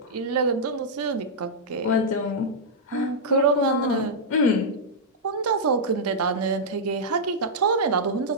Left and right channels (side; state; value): both; normal; correlation -0.09